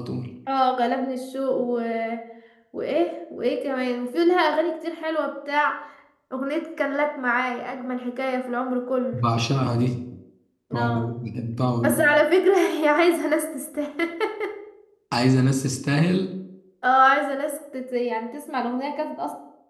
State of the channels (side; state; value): both; identical; correlation 1.00